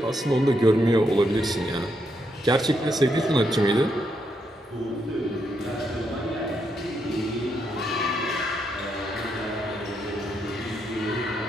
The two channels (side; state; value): both; normal; correlation 0.79